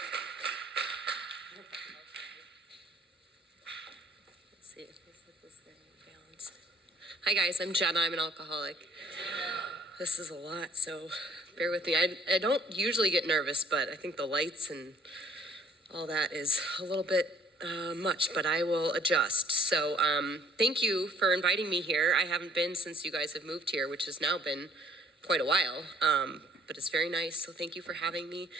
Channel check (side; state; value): both; normal; correlation 0.58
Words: Let's see if this thing balanced. Hi guys, I'm Jenna. I'm an alcoholic. This is a lot, so bear with me. I don't usually get nervous, but I think the lights and all that is a little bit much, but I will adjust. So thank you for inviting me here. I haven't been since you guys have moved here, which has now been quite a while, but it's very nice. So thank you for having me.